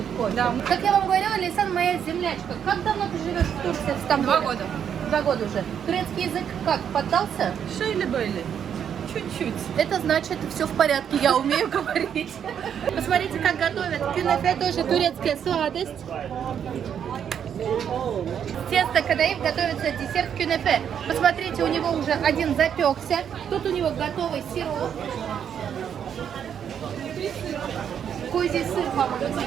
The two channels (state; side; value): quieter; left; 8.4 dB